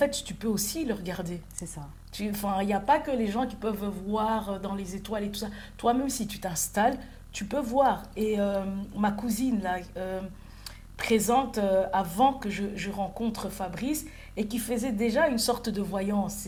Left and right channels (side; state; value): both; identical; correlation 1.00